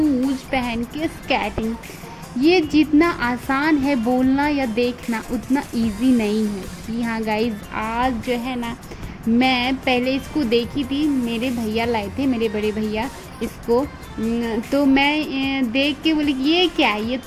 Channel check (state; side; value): identical; both; correlation 1.00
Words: पहन के स्केटिंग। ये जितना आसान है बोलना या देखना उतना इजी नहीं है। जी हाँ गाइज, आज जो है ना, मैं पहले इसको देखी थी, मेरे भैया लाए थे, मेरे बड़े भैया इसको। तो मैं देख के बोली कि ये क्या है, ये